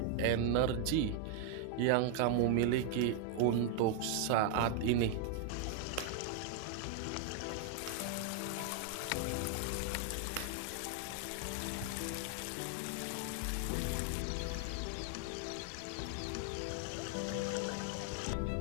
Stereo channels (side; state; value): both; different; correlation 0.00